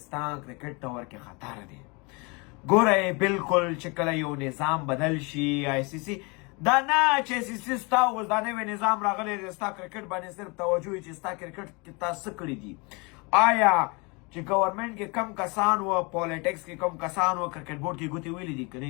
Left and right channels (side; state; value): right; quieter; 29.1 dB